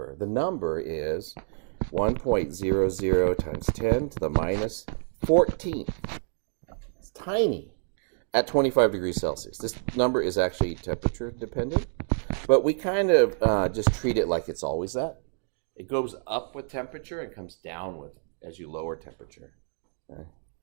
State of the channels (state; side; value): silent; left; digital silence